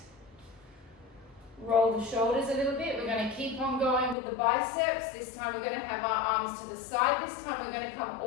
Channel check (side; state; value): right; drops out; at 4.2 s